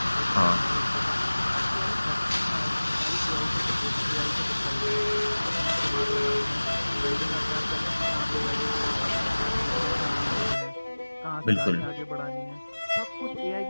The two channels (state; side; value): inverted; both; correlation -1.00